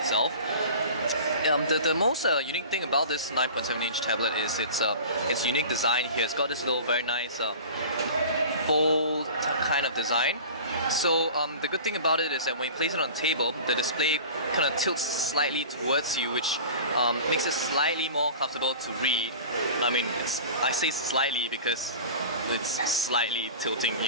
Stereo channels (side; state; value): both; inverted; correlation -0.37